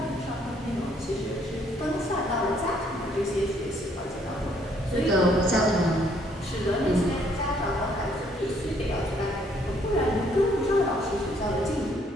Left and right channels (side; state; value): both; normal; correlation 0.66